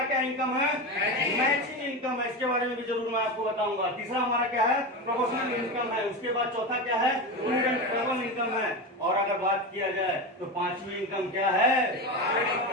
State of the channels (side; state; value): both; normal; correlation 0.20